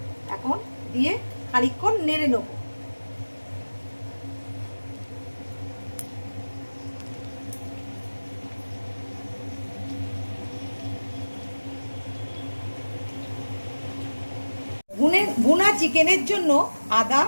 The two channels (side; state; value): both; inverted; correlation -1.00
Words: এখন দিয়ে খানিকক্ষণ নেড়ে নেব। ভুনা চিকেনের জন্য আদা,